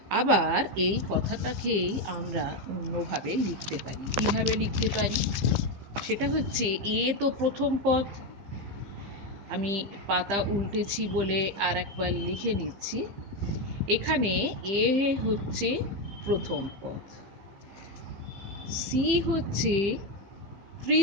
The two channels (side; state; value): left; late; 15 ms